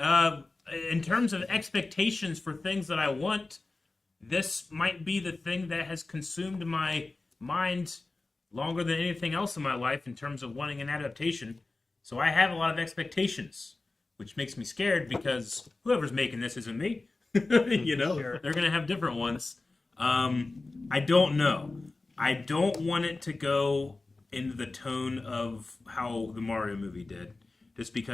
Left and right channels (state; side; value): quieter; right; 3.4 dB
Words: In terms of expectations for things that I want, this might be the thing that has consumed my mind longer than anything else in my life in terms of wanting an adaptation. So I have a lot of expectations, which makes me scared because whoever's making this isn't me. You know, Sure. They're going to have different ones. I don't know. I don't want it to go into the tone of how the Mario movie did, just